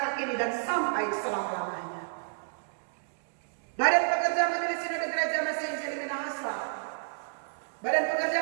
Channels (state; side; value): silent; left; digital silence